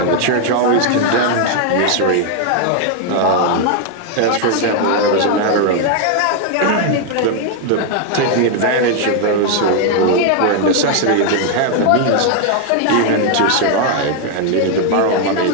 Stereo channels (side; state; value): both; different; correlation 0.00